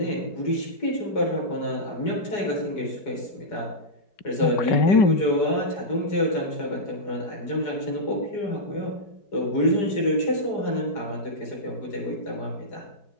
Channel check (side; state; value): right; late; 4.9 ms